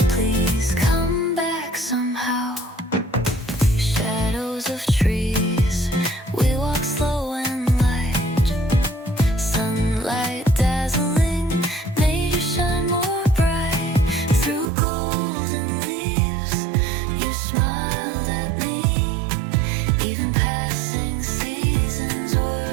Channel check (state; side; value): drops out; left; at 14.7 s